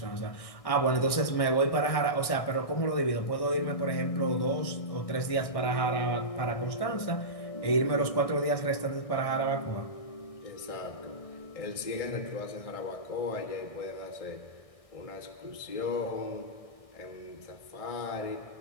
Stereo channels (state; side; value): late; right; 1.6 ms